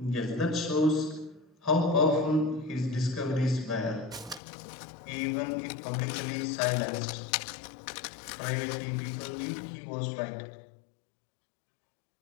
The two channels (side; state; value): right; drops out; at 4.4 s